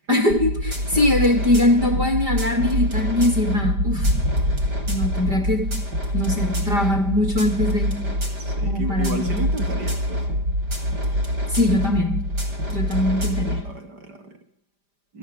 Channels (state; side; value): late; left; 5.0 ms